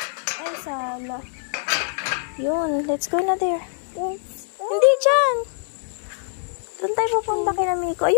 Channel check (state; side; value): silent; right; digital silence